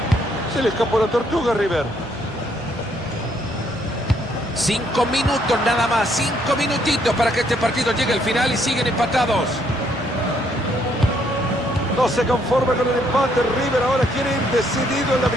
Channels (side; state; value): both; normal; correlation 0.70